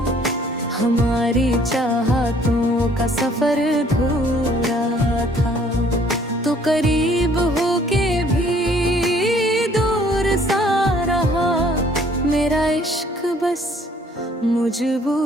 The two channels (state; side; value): normal; both; correlation 0.60